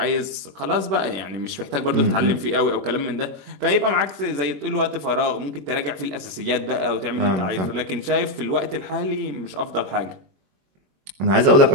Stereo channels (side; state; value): left; late; 21 ms